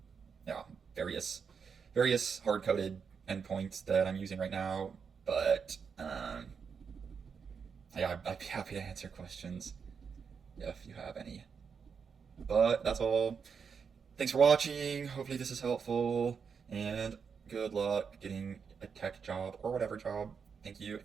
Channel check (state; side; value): quieter; left; 6.2 dB